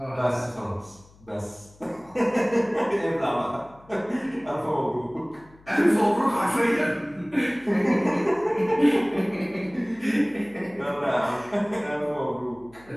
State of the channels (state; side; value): noise; left; hum, 27 dB below the sound